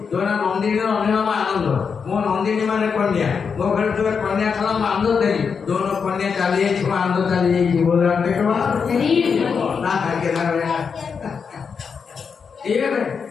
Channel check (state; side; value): quieter; right; 6.0 dB